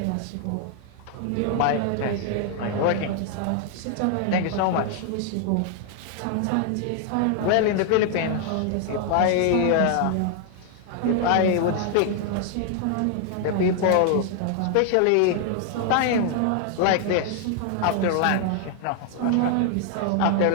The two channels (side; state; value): both; different; correlation 0.00